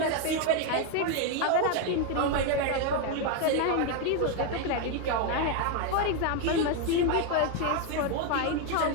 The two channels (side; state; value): both; different; correlation 0.01